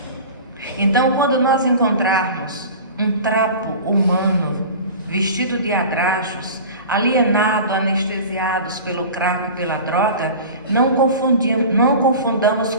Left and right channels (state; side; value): inverted; both; correlation -0.36